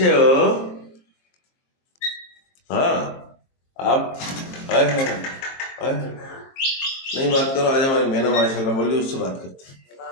हो? हाँ, आप आए हैं, आए हैं। नहीं बात करो, आज हमारी मैंने माशाल्लाह बोल ली, उससे बात करते हैं।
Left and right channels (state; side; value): late; right; 22 ms